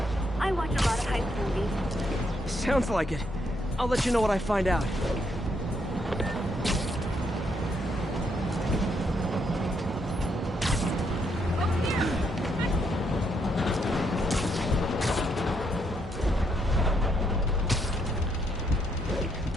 I watch a lot of heist movies. Sounds like it. I'll let you know what I find out.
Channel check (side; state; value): both; normal; correlation 0.75